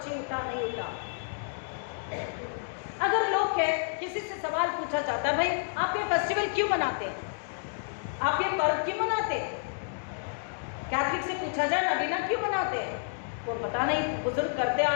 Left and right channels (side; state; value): right; silent; digital silence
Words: नहीं उठा। अगर लोग के किसी से सवाल पूछा जाता है, भाई आप ये फेस्टिवल क्यों मनाते हैं, आप ये पर्व क्यों मनाते हैं, कैथलिक से पूछा जाए नगीना क्यों मनाते हैं, वो पता नहीं, बुजुर्ग करते आ